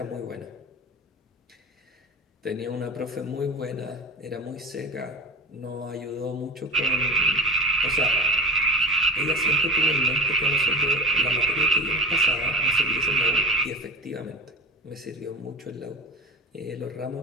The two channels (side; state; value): both; normal; correlation 0.30